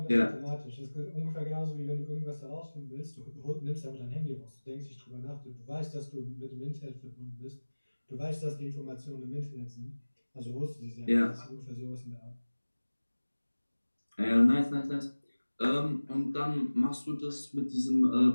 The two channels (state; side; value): inverted; both; correlation -1.00